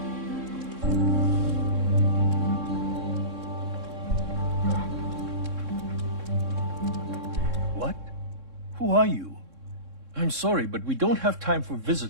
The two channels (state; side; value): late; left; 3.6 ms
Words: What? Who are you? I'm sorry, but we don't have time for